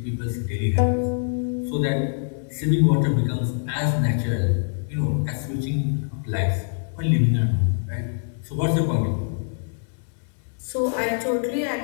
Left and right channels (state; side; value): silent; right; digital silence